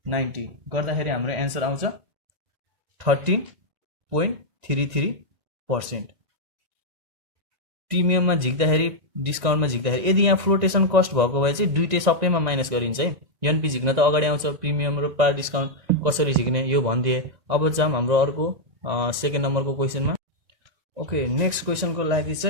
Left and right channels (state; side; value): late; left; 1.9 ms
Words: 90 गर्दाखेरि हाम्रो एन्सर आउँछ 13.33%। प्रिमियममा झिक्दाखेरि डिस्काउन्टमा झिक्दाखेरि यदि यहाँ फ्लोटेसन कस्ट भएको भए चाहिँ दुइटै सबैमा माइनस गरिन्छ है। एनपी झिक्न त अगाडि आउँछ, प्रिमियम र पार डिस्काउन्ट कसरी झिक्ने यो भनिदिए। अब जाम हाम्रो अर्को 2nd नम्बरको क्वेसनमा। ओके, नेक्स्ट क्वेसनको लागि